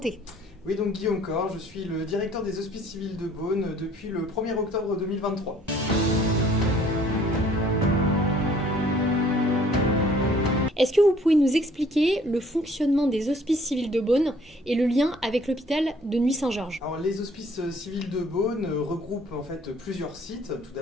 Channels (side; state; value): both; normal; correlation 0.57